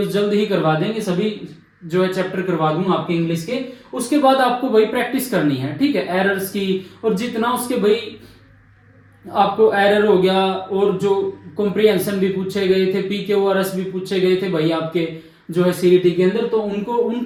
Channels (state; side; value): identical; both; correlation 1.00